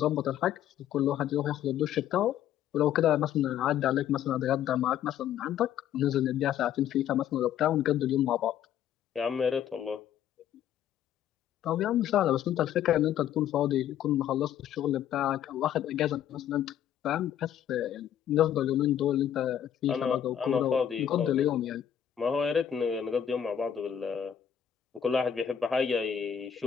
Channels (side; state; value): right; quieter; 9.9 dB